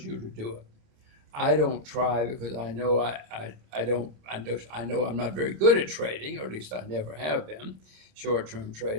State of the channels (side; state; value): left; late; 28 ms